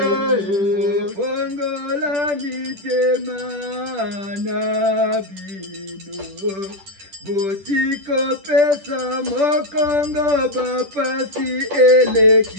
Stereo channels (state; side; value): late; left; 10 ms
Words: Fongola mitema na bino, botiko pesa mokongo bapasi